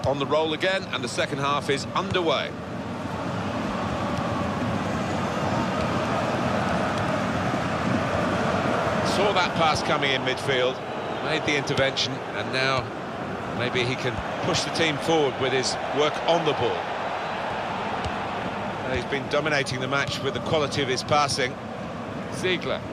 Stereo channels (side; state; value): both; identical; correlation 1.00